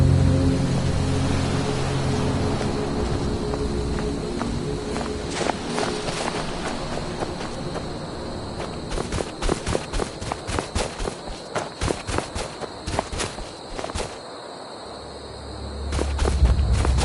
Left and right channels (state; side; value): identical; both; correlation 1.00